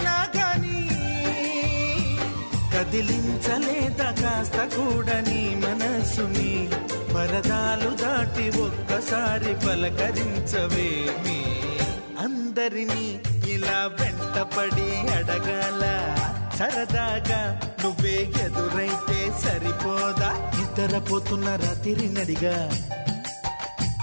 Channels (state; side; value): inverted; both; correlation -1.00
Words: గాని కదిలించలేదా కాస్త కూడా నీ మనసుని పరదాలు దాటి ఒక్కసారి పలకరించవేమి అందరినీ ఇలా వెంటపడి అడగాల సరదాగా నువ్వే ఎదురైతే సరిపోదా నిద్రపోతున్న రాత్రి నడిగా